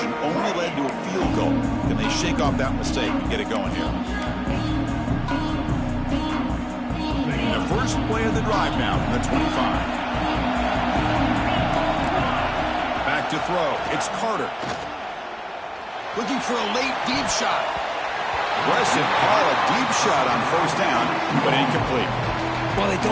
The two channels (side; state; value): both; identical; correlation 1.00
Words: only led to a field goal. Can they shake off that mistake and get it going here? And the first play of the drive now from the 25. Back to throw. It's Carter. Looking for a late deep shot. Aggressive call, a deep shot on first down, but incomplete. Well, they